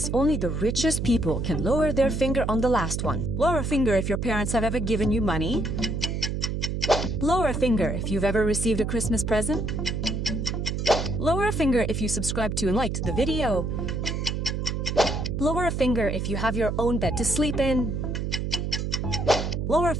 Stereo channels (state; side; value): noise; right; hum, 2 dB below the sound